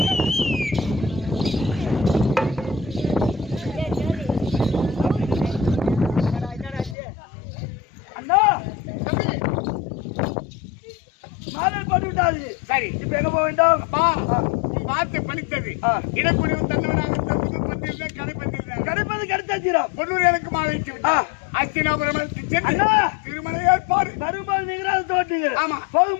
அண்ணா மாடல் போட்டு விட்டாது. சரி இப்ப எங்க போக வேண்டும்? அப்பா பார்த்து பணித்தது இடக்குடிவு தந்தவனாக கடைப்பது கிடைத்தாச்சிரம் பொன்னூர் எனக்கு மாலைக்கு விட்டா அஸ்தினாபுரம் திருமண ஏற்பாடு வரும்போது நீங்க தோட்டீங்க. ஆமா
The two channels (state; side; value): drops out; right; at 7.0 s